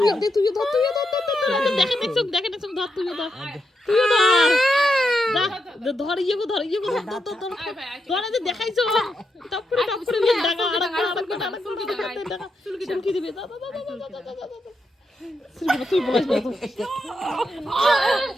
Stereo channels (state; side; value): normal; both; correlation 0.84